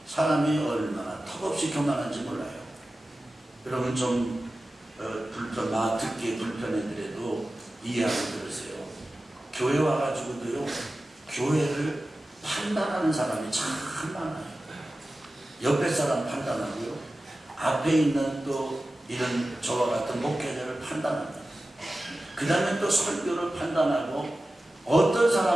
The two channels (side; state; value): both; normal; correlation 0.95